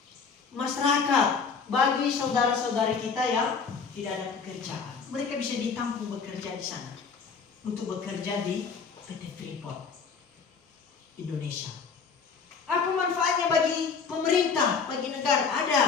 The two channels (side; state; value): right; quieter; 5.5 dB